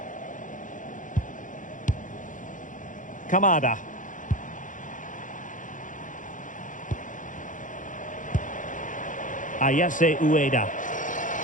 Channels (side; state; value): right; late; 0.38 ms